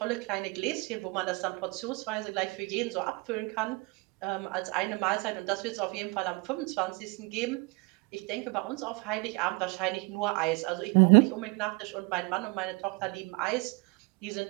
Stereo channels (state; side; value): quieter; left; 27.2 dB